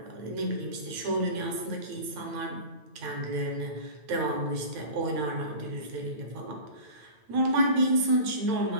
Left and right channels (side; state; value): left; late; 8.9 ms